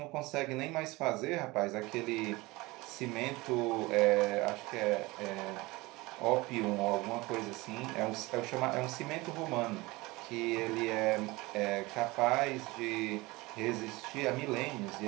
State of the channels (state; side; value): quieter; left; 22.2 dB